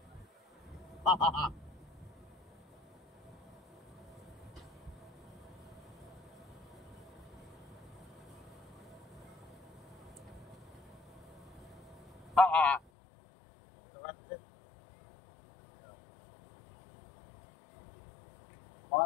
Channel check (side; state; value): right; drops out; at 12.8 s